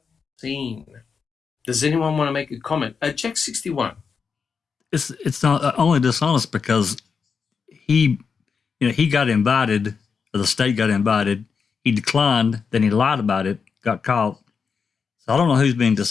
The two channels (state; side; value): quieter; right; 5.7 dB